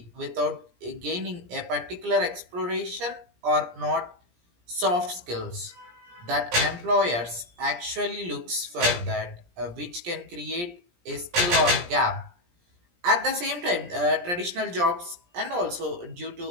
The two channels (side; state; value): left; late; 17 ms